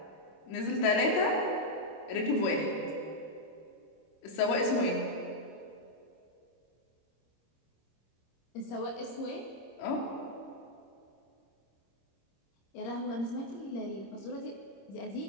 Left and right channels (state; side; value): late; right; 26 ms